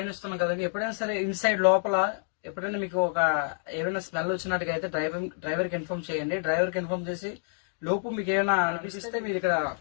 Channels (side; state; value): right; silent; digital silence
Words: కదండి. ఎప్పుడైనా సరే ఇన్సైడ్ లోపల ఎప్పుడైనా మీకు ఏమైనా స్మెల్ వచ్చినట్టుగా అయితే డ్రైవర్ కి ఇన్ఫార్మ్ చేయండి. డ్రైవర్ కి ఇన్ఫార్మ్ చేసి లోపు మీకు ఏమైనా అనిపిస్తే మీరు ఇక్కడ